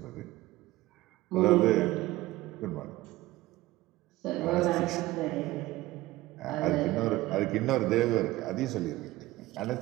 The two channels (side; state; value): left; quieter; 17.9 dB